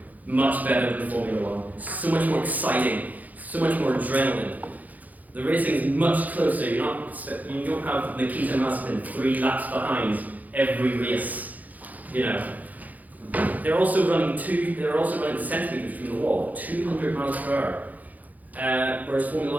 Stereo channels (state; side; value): late; left; 0.080 ms